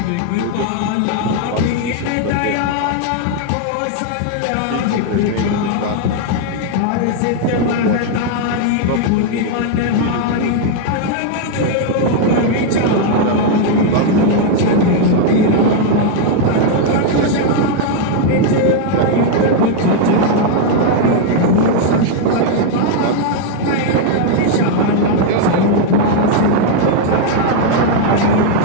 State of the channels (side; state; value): both; different; correlation 0.00